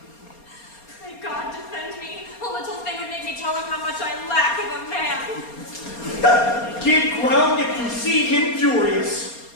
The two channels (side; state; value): right; late; 4.3 ms